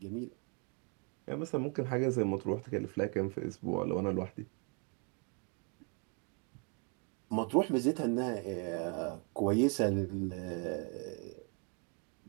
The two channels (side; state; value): left; quieter; 36.4 dB